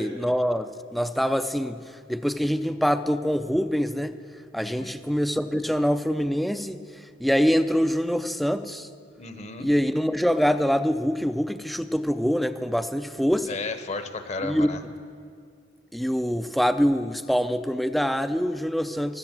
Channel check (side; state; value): both; normal; correlation 0.95